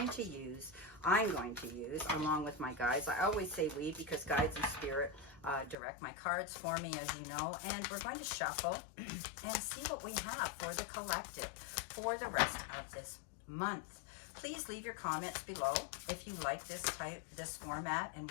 to use. I'm going to use along with my guides. I always say we because guides and spirit direct my cards for me, as you know. And we're going to shuffle and see what we have for the collective for the rest of this month. Please leave your comments below if you like this format and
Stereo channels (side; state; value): right; drops out; at 5.8 s